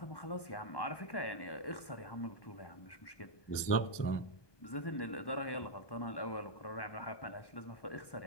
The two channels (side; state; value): right; late; 1.2 ms